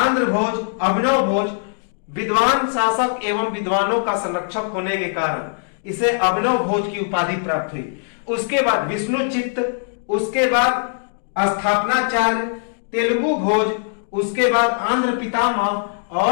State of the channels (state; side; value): silent; right; digital silence